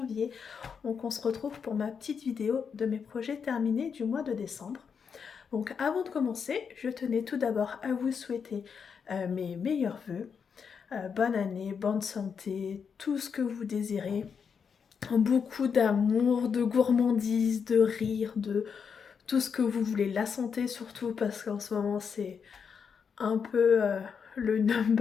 Donc on se retrouve pour ma petite vidéo de mes projets terminés du mois de décembre. Donc avant de commencer, je tenais tout d'abord à vous souhaiter mes meilleurs vœux. Bonne année, bonne santé, tout ce que vous désirez. Beaucoup d'amour, de gourmandise, de rire, de tout ce que vous voulez. La santé surtout parce qu'en ce moment c'est un peu le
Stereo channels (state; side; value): quieter; right; 6.4 dB